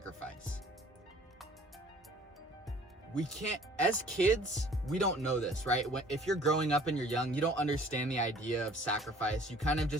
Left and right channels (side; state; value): both; normal; correlation 0.53